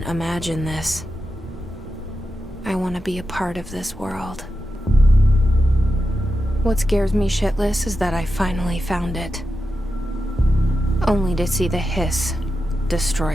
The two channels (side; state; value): both; normal; correlation 0.89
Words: imagine this. I want to be a part of this world. What scares me shitless is that I finally found it. Only to see the hiss